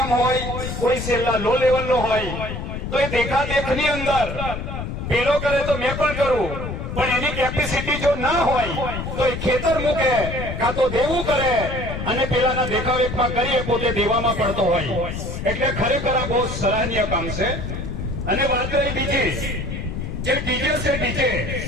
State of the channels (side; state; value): left; noise; rumble, 5 dB below the sound